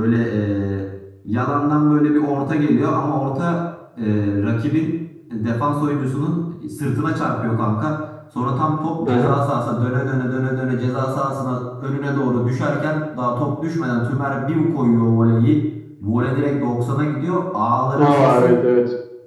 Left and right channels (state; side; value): identical; both; correlation 1.00